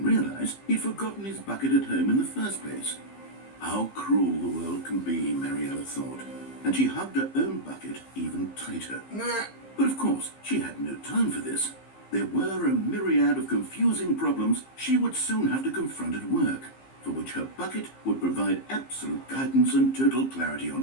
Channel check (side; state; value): right; late; 15 ms